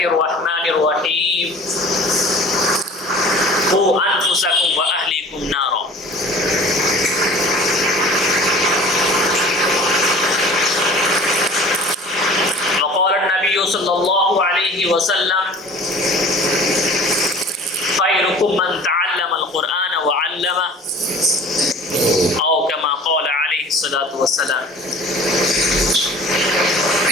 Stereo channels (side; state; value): both; normal; correlation 0.44